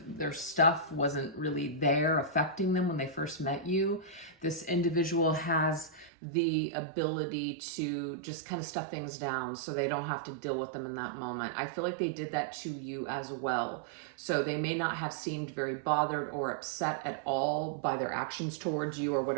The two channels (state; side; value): drops out; left; at 6.1 s